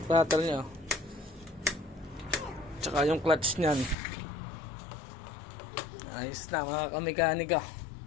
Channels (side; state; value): right; drops out; at 4.0 s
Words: throttle nyo. Tsaka yung clutch nyan. Ayos na mga kamekanika.